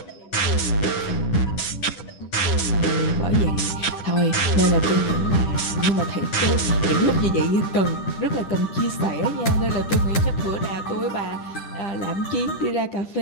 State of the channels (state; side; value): late; right; 10 ms